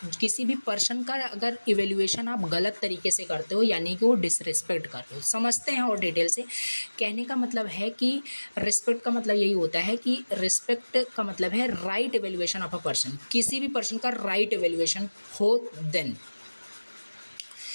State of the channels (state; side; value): inverted; both; correlation -1.00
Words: किसी भी पर्सन का अगर इवेल्युएशन आप गलत तरीके से करते हो, यानी कि वो डिसरिस्पेक्ट करते हो। समझते हैं और डिटेल से। कहने का मतलब है कि रिस्पेक्ट का मतलब यही होता है कि रिस्पेक्ट का मतलब है right evaluation of a person, किसी भी पर्सन का राइट इवेल्युएशन हो। देन